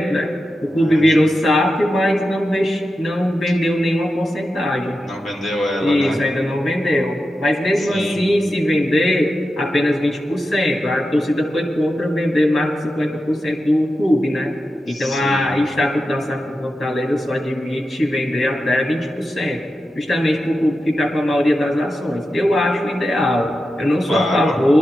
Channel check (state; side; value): normal; both; correlation 0.90